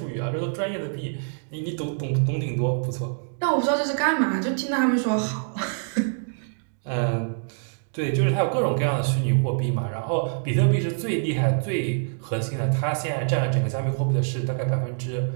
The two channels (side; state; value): left; silent; digital silence